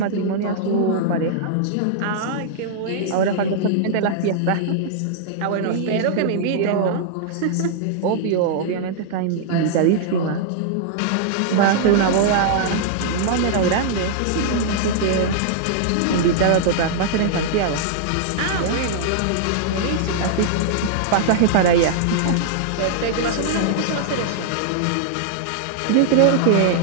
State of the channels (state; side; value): different; both; correlation -0.01